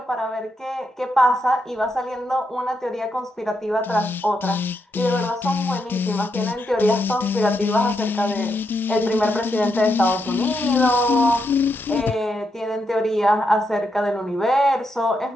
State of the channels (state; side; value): normal; both; correlation 0.82